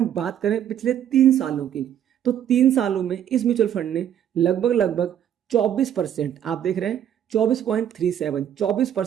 बात करें पिछले 3 सालों की, तो 3 सालों में इस म्यूचुअल फंड ने लगभग 24%, आप देख रहे हैं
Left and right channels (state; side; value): quieter; left; 10.0 dB